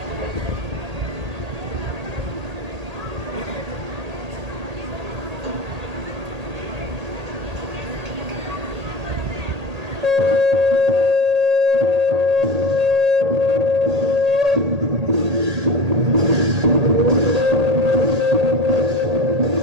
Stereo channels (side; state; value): left; late; 1.8 ms